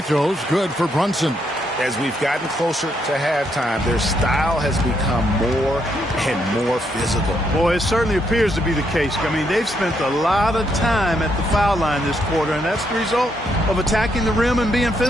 throws good for Brunson. As we've gotten closer to halftime, their style has become more and more physical. Boy, it certainly appears to be the case. I mean, they've spent a lot of time at the foul line this quarter, and that's the result of attacking the rim and being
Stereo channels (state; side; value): normal; both; correlation 0.76